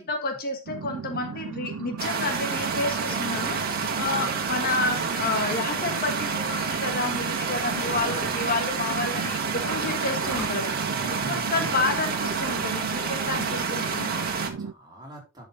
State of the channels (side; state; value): both; normal; correlation -0.10